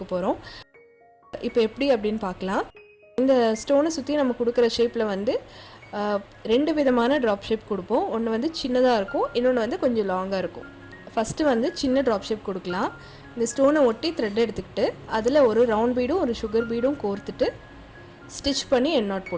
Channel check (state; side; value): identical; both; correlation 1.00